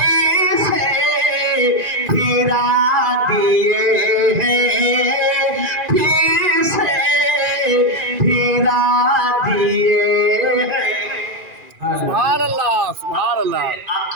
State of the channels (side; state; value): left; late; 2.4 ms